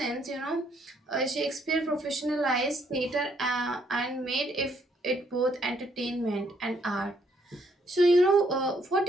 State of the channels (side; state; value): both; normal; correlation 0.70